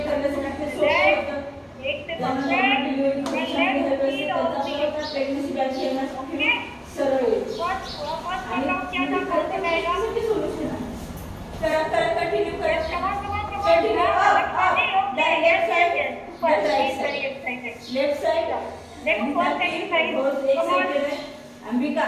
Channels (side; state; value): both; identical; correlation 1.00